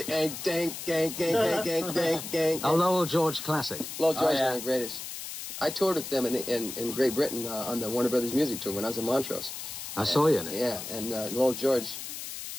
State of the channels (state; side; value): noise; left; hiss, 8 dB below the sound